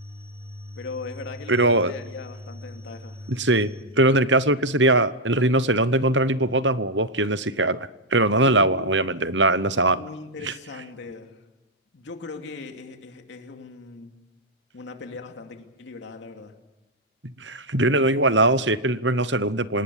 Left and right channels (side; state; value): both; normal; correlation -0.02